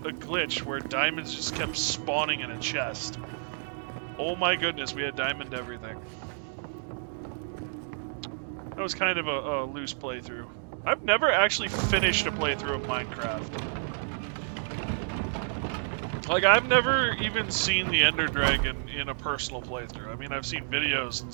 where diamonds just kept spawning in a chest. Oh my goodness, we had diamond everything. That was kind of a loose playthrough. I've never actually finished a playthrough of Minecraft. Like, I've never even seen the Ender Dragon in a personal playthrough. I mean, I've seen videos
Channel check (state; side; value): silent; left; digital silence